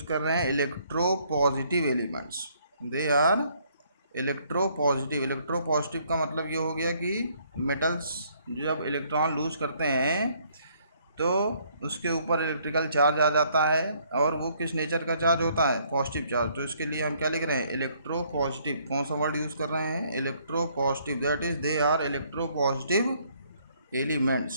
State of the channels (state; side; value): inverted; both; correlation -0.66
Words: कर रहे हैं electropositive elements, they are electropositive का मतलब ये हो गया कि मेटल्स जब इलेक्ट्रॉन लूज करते हैं तो उसके ऊपर इलेक्ट्रिकल चार्ज आ जाता है और वो किस नेचर का चार्ज होता है, पॉजिटिव चार्ज। तो इसके लिए हम क्या लिख रहे हैं, इलेक्ट्रो पॉजिटिव। कौन सा वर्ड यूज़ कर रहे हैं, electropositive, that is they are electropositive